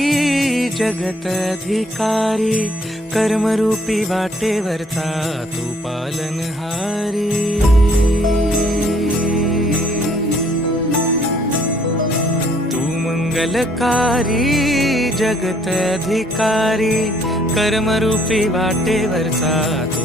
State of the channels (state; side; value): normal; both; correlation 0.63